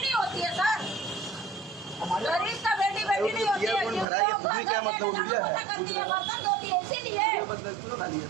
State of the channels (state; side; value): drops out; left; at 4.0 s